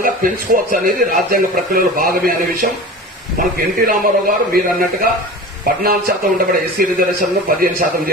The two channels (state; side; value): normal; both; correlation 0.34